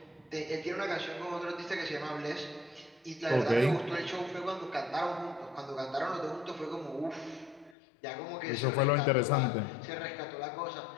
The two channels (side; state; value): right; drops out; at 7.8 s